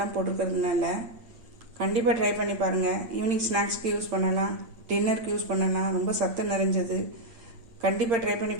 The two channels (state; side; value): late; left; 8.8 ms